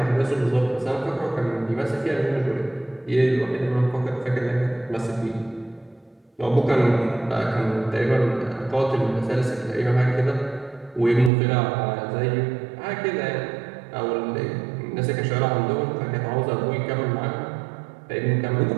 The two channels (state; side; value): drops out; left; at 11.3 s